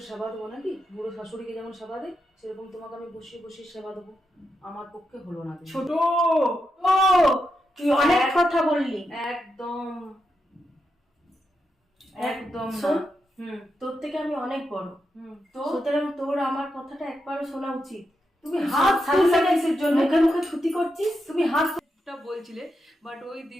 সেবা দেবো নাকি? বুড়ো শাশুড়িকে যেমন সেবা দেয়, সেরকম তোমাকে আমি বসিয়ে বসিয়ে সেবা দেবো? আমার পক্ষে হলো না। ছোট ও, তুই অনেক কথা বললি। একদম একদম না। শোন, তোর থেকে আমি অনেক বড়, তো সুতরাং তোর আমার কথাটা একবারও শোনা উচিত। তুমি হাত তুললে কিসের জন্য? মুখে মুখে ছুটি করছিস। তুমি হাত বলছিলে, বাট ওই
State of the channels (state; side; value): normal; both; correlation 0.85